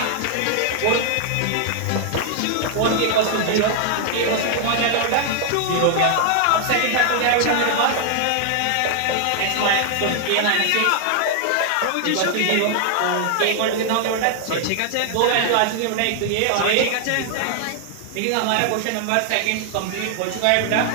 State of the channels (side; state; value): both; different; correlation 0.00